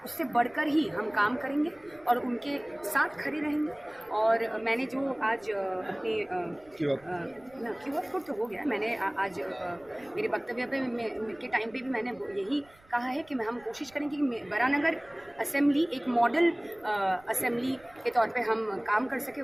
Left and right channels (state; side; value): noise; right; rumble, 28 dB below the sound